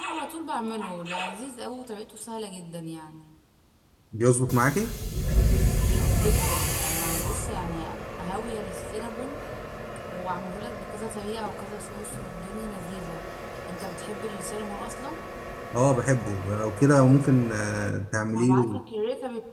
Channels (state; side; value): identical; both; correlation 1.00